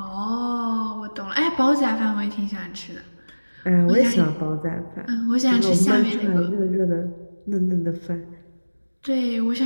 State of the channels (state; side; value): inverted; both; correlation -1.00